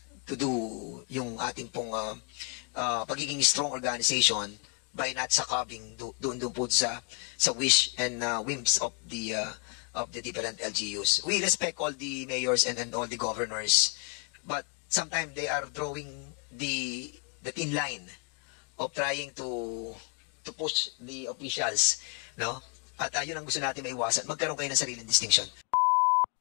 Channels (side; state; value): right; quieter; 35.1 dB